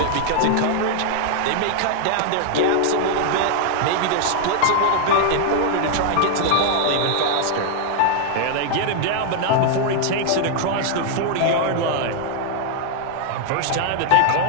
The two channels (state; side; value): different; both; correlation 0.00